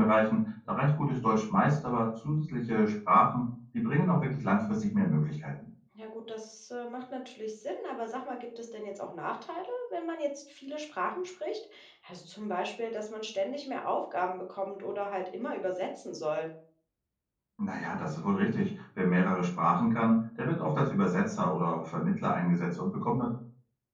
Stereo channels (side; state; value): both; identical; correlation 1.00